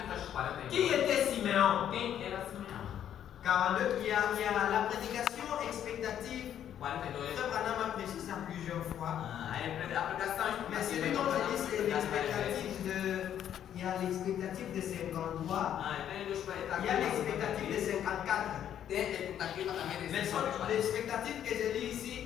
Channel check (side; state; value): right; quieter; 10.1 dB